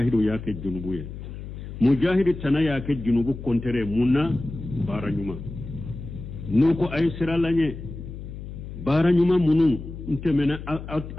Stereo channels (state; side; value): noise; left; hum, 11 dB below the sound